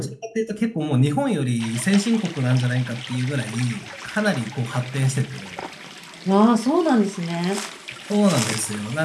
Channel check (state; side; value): identical; both; correlation 1.00